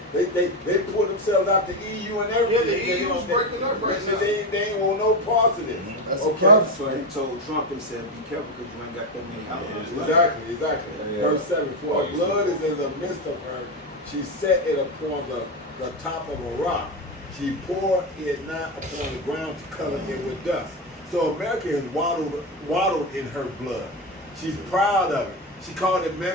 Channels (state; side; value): normal; both; correlation 0.14